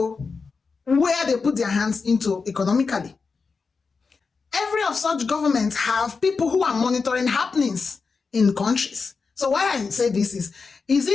where they put their hands into economically. Every of such governments have people who are monitoring happenings in countries. So why I say this is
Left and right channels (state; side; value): quieter; right; 4.8 dB